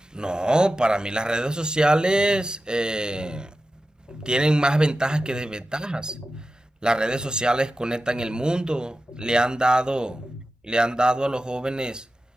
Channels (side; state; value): both; normal; correlation 0.93